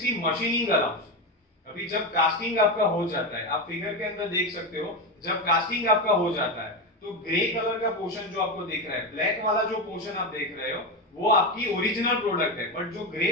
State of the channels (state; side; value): normal; both; correlation 0.15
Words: machining allowance. अभी जब कास्टिंग आपका हो जाता है, आप फिगर के अंदर देख सकते हो, जब कास्टिंग आपका हो जाता है तो ग्रे कलर का पोर्शन जो आपको दिख रहा है, ब्लैक वाला जो पोर्शन आप देख रहे हो वो आपकी ओरिजिनल प्रोडक्ट है, बट जो